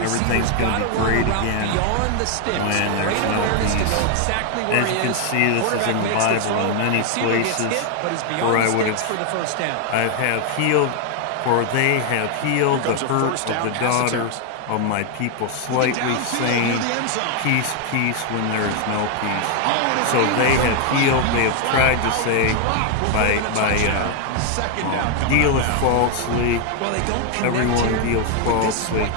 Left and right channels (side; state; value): both; different; correlation 0.00